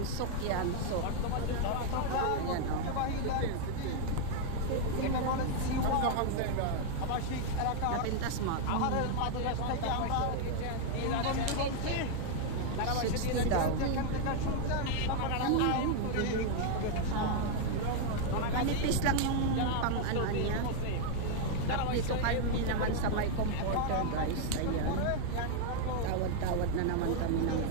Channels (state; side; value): different; both; correlation 0.00